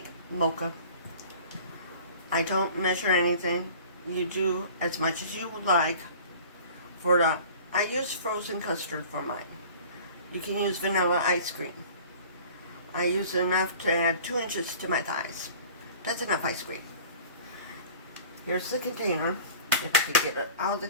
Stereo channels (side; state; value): both; inverted; correlation -0.44